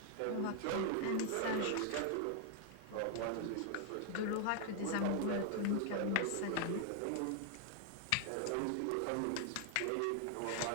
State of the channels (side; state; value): both; different; correlation 0.00